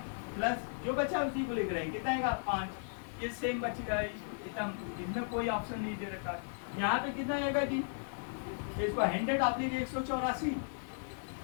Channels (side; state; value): right; silent; digital silence